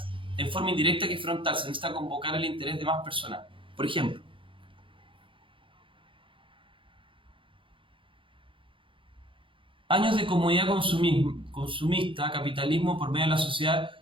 en forma indirecta que frontal. Se necesita convocar el interés de más personas. Por ejemplo. Años de comodidad consumista, capitalismo por medio de la sociedad,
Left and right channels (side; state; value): left; late; 0.25 ms